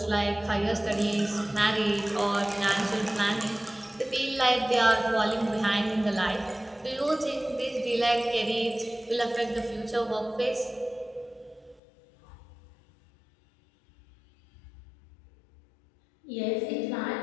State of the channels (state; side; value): drops out; right; at 11.8 s